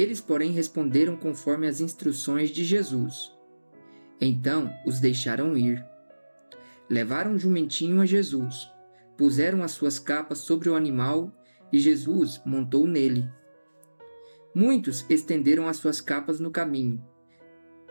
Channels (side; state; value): both; inverted; correlation -1.00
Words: porém, responderam conforme as instruções de Jesus. Então os deixaram ir. Levaram o jumentinho a Jesus, puseram as suas capas sobre o animal e Jesus montou nele. Muitos estenderam as suas capas no caminho,